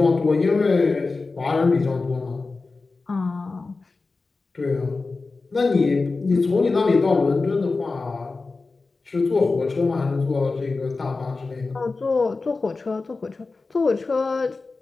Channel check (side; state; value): right; quieter; 3.9 dB